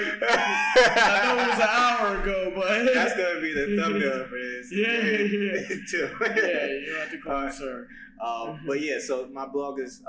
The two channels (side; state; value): both; identical; correlation 1.00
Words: know it was an hour ago, but that's gonna be the thumbnail for this. Tim. Yeah, you don't have to call me sir. But yeah, so my blog is